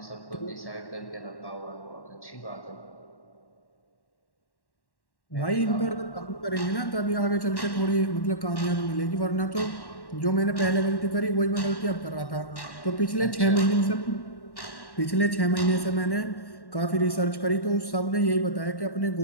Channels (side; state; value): right; late; 1.1 ms